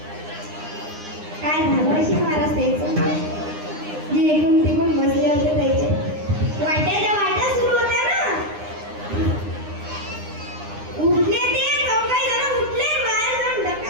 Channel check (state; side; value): late; left; 9.8 ms